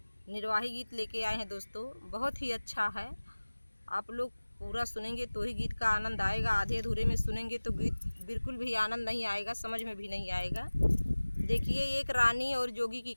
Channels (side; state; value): both; inverted; correlation -1.00